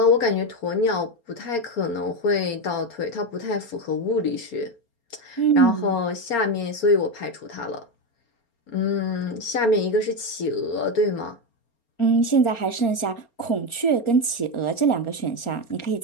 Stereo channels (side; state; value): right; late; 4.3 ms